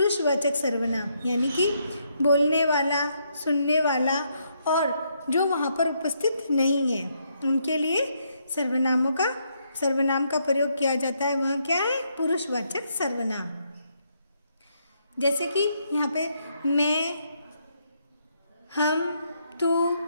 सर्वनाम। यानी कि बोलने वाला, सुनने वाला और जो वहाँ पर उपस्थित नहीं है उनके लिए सर्वनाम का प्रयोग किया जाता है। वह क्या है? पुरुषवाचक सर्वनाम। जैसे कि यहाँ पे मैं, हम, तू,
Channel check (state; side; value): inverted; both; correlation -0.75